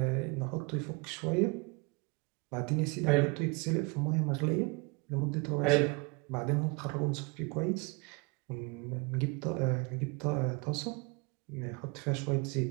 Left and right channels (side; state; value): left; quieter; 28.8 dB